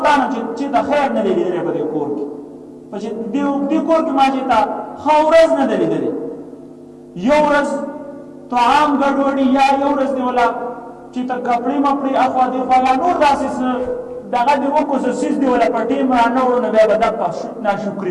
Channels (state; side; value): identical; both; correlation 1.00